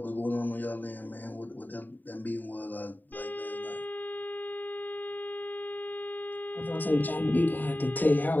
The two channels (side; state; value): right; late; 0.088 ms